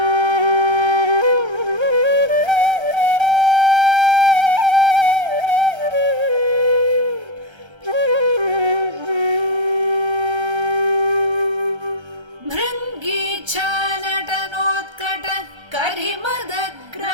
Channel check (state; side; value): late; left; 1.3 ms